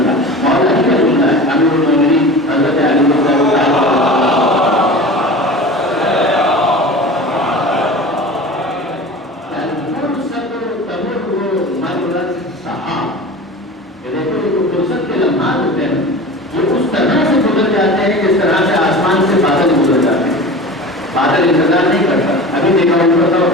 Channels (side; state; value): both; normal; correlation 0.35